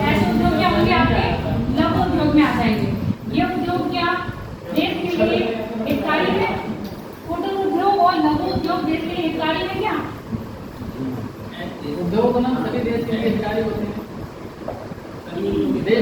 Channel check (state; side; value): identical; both; correlation 1.00